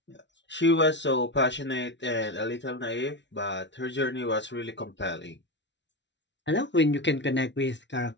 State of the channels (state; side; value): late; right; 0.52 ms